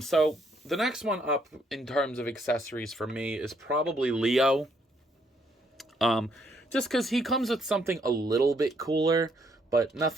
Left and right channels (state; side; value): normal; both; correlation 0.71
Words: the next one up in terms of accessories for me is probably Leo. Just because he comes with something a little bit cooler, but